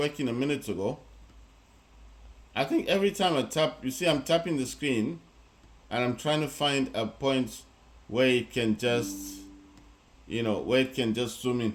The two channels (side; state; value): both; identical; correlation 1.00